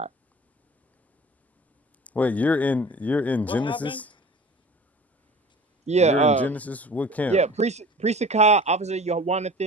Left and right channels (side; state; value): both; normal; correlation 0.42